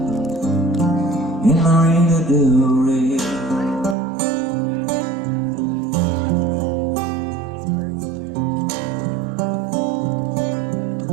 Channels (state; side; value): drops out; left; at 4.0 s